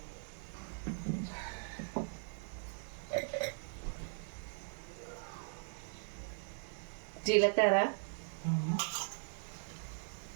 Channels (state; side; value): silent; left; 51 dB below the other